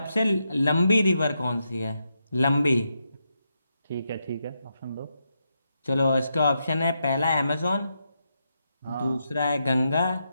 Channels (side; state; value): both; inverted; correlation -0.84